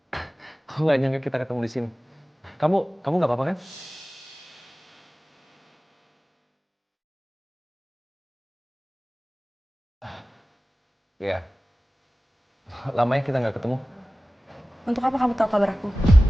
Aku nggak nyangka kita ketemu di sini. Kamu nggak apa-apa kan? Iya. Lamanya kita nggak ketemu. Untuk apa kamu tahu kabar aku?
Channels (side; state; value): both; normal; correlation 0.97